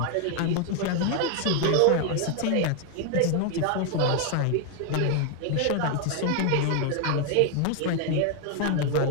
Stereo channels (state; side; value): different; both; correlation 0.01